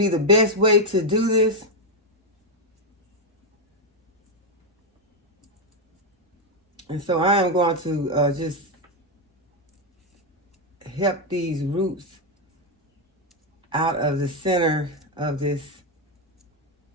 the best way to do this. And so I am going to just help these roots out of the center of this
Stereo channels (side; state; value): both; normal; correlation 0.04